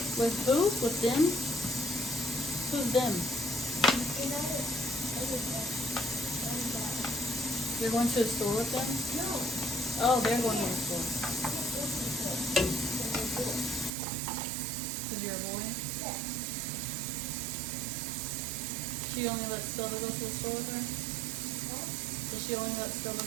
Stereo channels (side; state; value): left; drops out; at 13.9 s